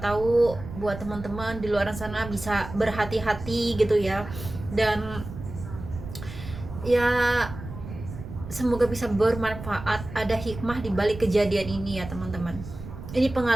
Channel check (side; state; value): right; noise; rumble, 11 dB below the sound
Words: buat teman-teman di luar sana bisa berhati-hati gitu ya. Dan ya semoga bisa bermanfaat, ada hikmah di balik kejadian ini ya teman-teman. Ini